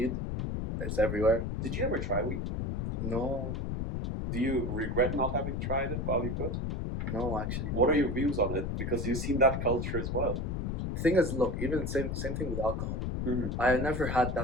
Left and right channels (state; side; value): noise; left; rumble, 1 dB below the sound